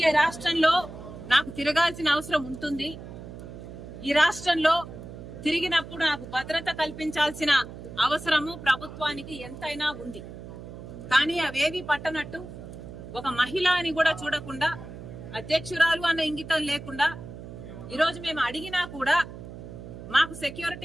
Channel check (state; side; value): noise; right; hum, 13 dB below the sound